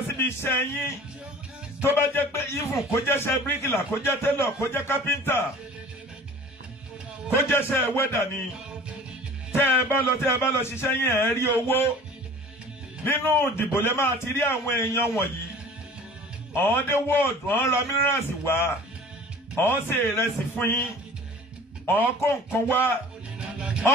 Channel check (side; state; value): both; normal; correlation 0.44